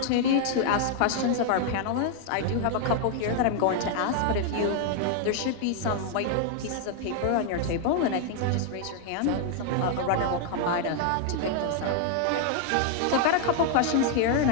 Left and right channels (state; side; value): different; both; correlation 0.00